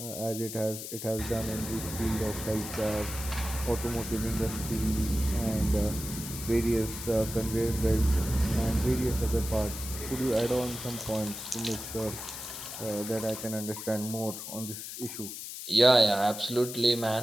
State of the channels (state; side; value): noise; left; hiss, 8 dB below the sound